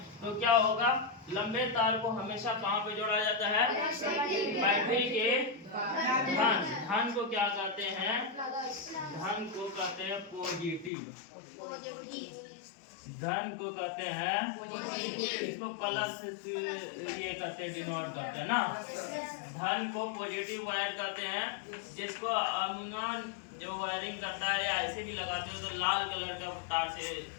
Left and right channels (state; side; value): drops out; right; at 10.9 s